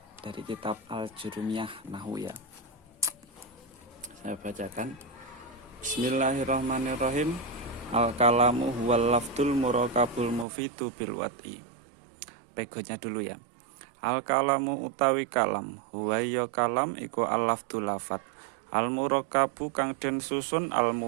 dari kitab Al-Jurumiyah Nahwu ya. Saya bacakan. Bismillahirrahmanirrahim. Al-kalamu huwal lafdul murakabul mufidu bil wat'i. Pegonya dulu ya. Al-kalamu utawi kalam, huwa ya kalam iku al-lafdul lafat. Al-murakabu kang den susun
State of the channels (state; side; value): drops out; left; at 10.5 s